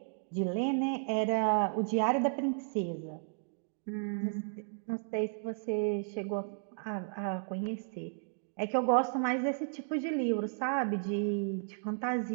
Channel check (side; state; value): left; silent; digital silence